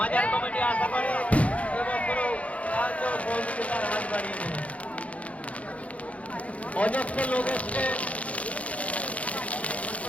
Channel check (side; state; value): right; late; 0.065 ms